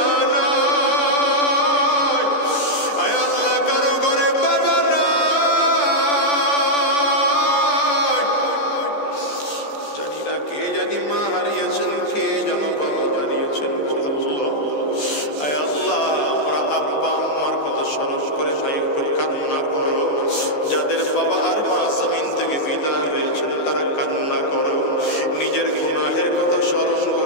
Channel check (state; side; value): late; right; 14 ms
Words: নাই, আয় আল্লাহ কারো ঘরে বাবা নাই, জানি না কে জানি মা হারিয়েছেন, কে যেন বাবা হারিয়েছেন গো আল্লাহ। আয় আল্লাহ আমরা আব্বা আম্মার কথা স্মরণ করে ভাই একটু কান্না করো, যাদের বাবা আর মা জমিন থেকে বিদায় হয়েছেন তারা কান্না করো, নিজের গুনাহের কথা স্মরণ